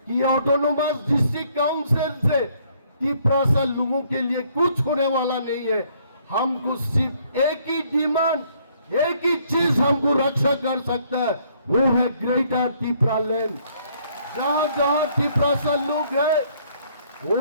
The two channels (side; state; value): both; inverted; correlation -0.66